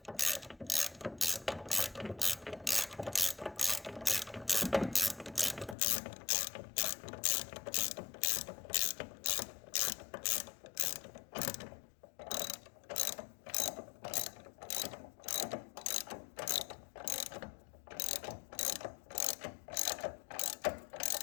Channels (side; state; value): right; drops out; at 5.8 s